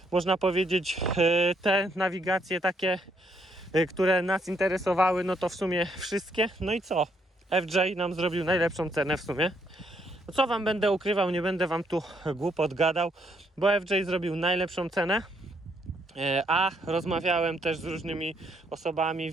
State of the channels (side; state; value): both; normal; correlation 0.73